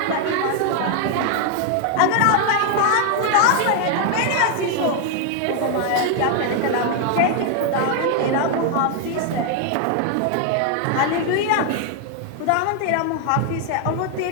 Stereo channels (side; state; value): both; different; correlation 0.00